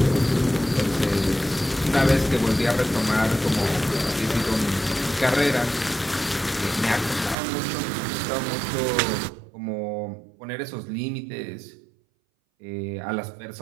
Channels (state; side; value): drops out; left; at 7.4 s